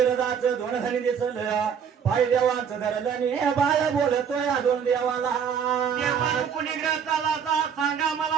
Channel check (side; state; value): left; quieter; 7.4 dB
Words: दोन धनी दिसल पाय देवाचं धरलं ने बाळ बोलतोय दोन देवाला चालाचा सांगा